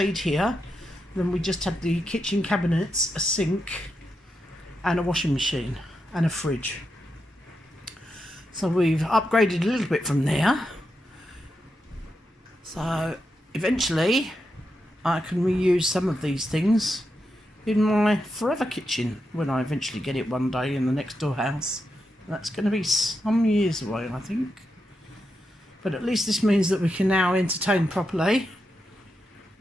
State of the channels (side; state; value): both; normal; correlation 0.86